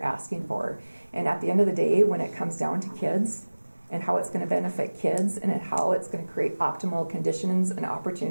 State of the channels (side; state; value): both; inverted; correlation -1.00